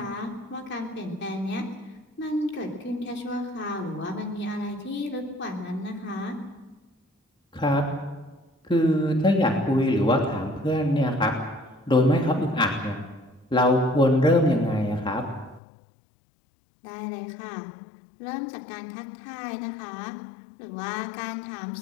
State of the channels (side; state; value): right; drops out; at 15.6 s